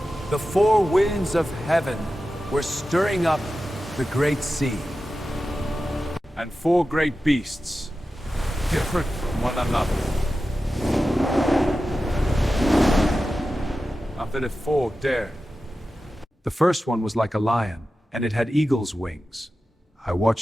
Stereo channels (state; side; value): normal; both; correlation 0.93